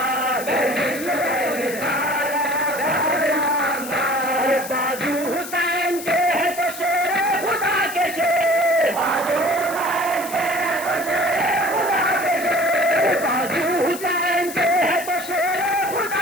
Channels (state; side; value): noise; left; hiss, 11 dB below the sound